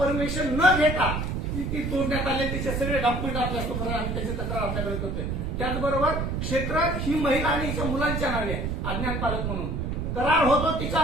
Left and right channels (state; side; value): noise; right; rumble, 2 dB below the sound